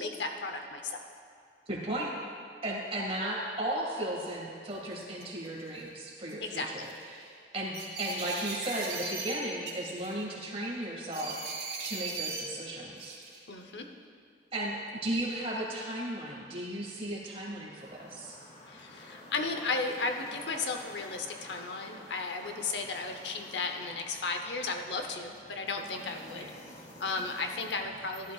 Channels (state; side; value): normal; both; correlation 0.11